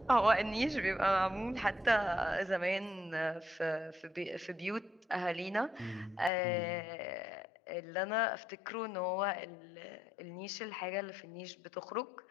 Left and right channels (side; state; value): right; drops out; at 6.3 s